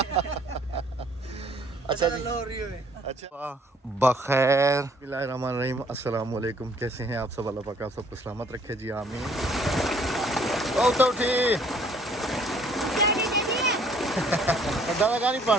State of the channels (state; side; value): normal; both; correlation 0.60